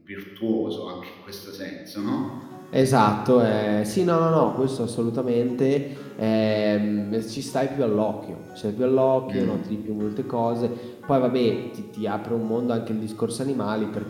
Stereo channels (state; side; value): identical; both; correlation 1.00